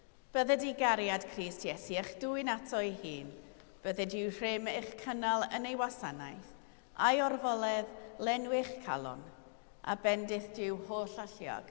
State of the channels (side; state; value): right; silent; digital silence